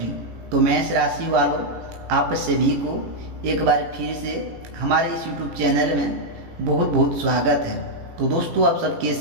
तो मेष राशि वालों, आप सभी को एक बार फिर से हमारे इस YouTube चैनल में बहुत बहुत स्वागत है। तो दोस्तों, आप सब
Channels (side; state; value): left; late; 18 ms